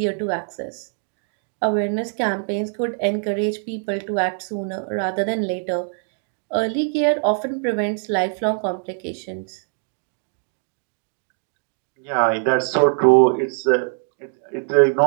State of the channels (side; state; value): left; silent; 61 dB below the other